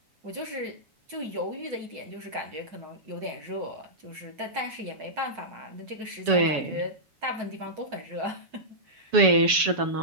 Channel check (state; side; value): late; left; 6.9 ms